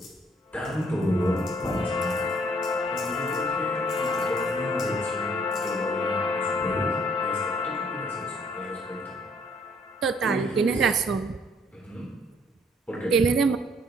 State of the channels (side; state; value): both; normal; correlation 0.63